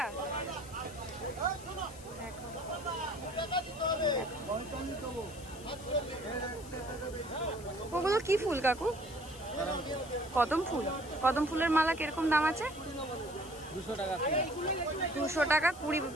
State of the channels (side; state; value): left; noise; hiss, 18 dB below the sound